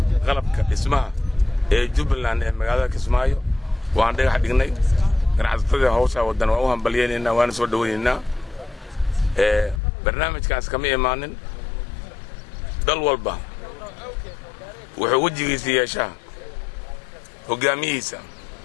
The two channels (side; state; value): right; drops out; at 9.8 s